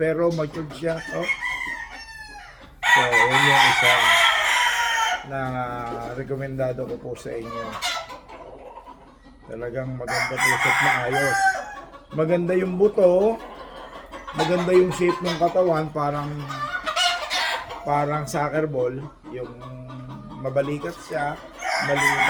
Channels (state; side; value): identical; both; correlation 1.00